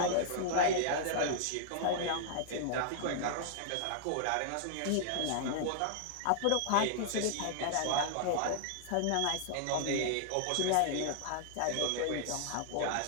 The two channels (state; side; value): different; both; correlation -0.01